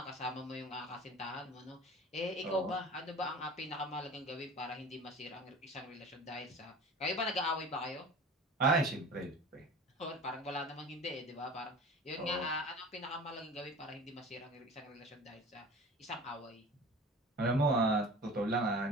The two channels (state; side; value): normal; both; correlation 0.39